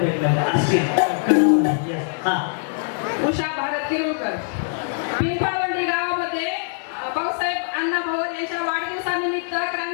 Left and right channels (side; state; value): right; silent; digital silence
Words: असतील. हा उषा भारत किरोळकर. पिंपावंडी गावामध्ये भाऊसाहेब अण्णा भवन यांच्या वाढदिवसानिमित्त